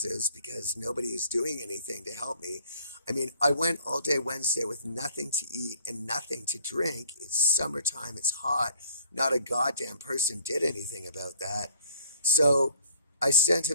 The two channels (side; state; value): both; inverted; correlation -0.57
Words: because nobody is doing anything to help me. I mean, I went all day Wednesday with nothing to eat and nothing to drink. It's summertime. It's hot. Not a goddamn person did anything about that. So I sent